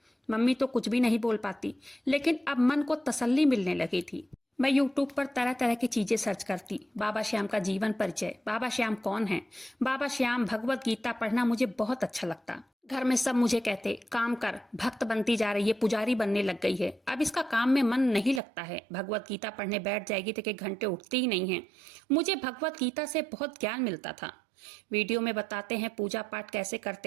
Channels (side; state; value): left; drops out; at 18.4 s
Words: मम्मी तो कुछ भी नहीं बोल पाती, लेकिन अब मन को तसल्ली मिलने लगी थी। मैं यूट्यूब पर तरह तरह की चीजें सर्च करती। बाबा श्याम का जीवन परिचय, बाबा श्याम कौन है, बाबा श्याम, भगवत गीता पढ़ना मुझे बहुत अच्छा लगता। घर में सब मुझे कहते, काम कर, भक्त बनती जा रही है, पुजारी बनने लग गई है, अब इसका काम में मन नहीं लगता है, भगवत गीता पढ़ने बैठ जाएगी तो एक घंटे उठती ही नहीं है। मुझे भगवत गीता से बहुत ज्ञान मिलता था। वीडियो में बताते हैं पूजा पाठ कैसे